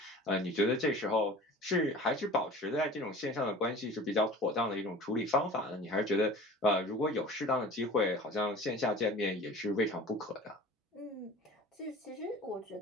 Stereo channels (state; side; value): normal; both; correlation 0.41